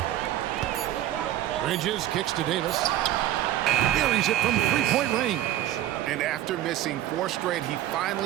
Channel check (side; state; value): left; quieter; 13.3 dB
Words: Bridges kicks to Davis. Buries it from 3-point range. And after missing 4 straight, he